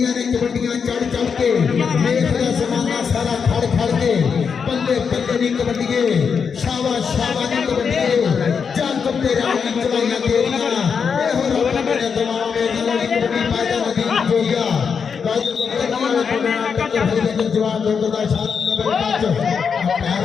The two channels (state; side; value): quieter; right; 6.2 dB